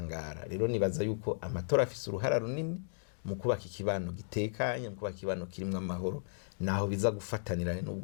Rero nibaza yuko amatora afise uruhara runini mu kubaka ikibano gitekanye, mu kubaka ikibano kirimwo amahoro, naho biza gufatanira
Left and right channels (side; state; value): right; silent; digital silence